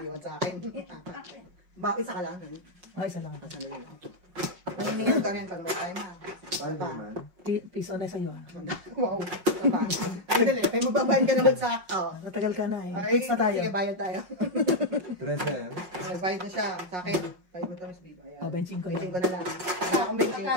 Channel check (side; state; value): left; late; 5.5 ms